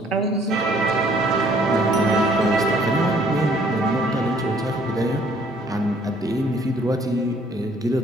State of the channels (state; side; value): normal; both; correlation 0.61